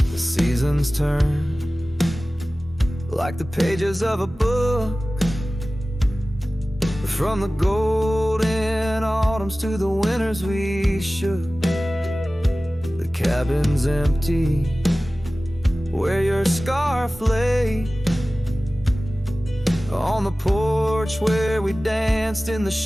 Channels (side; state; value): both; normal; correlation 0.97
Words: The seasons turn like the pages of a book, from the golden autumns to the winters we shook. The cabin's empty where your scarf lay, on the porch where we danced in the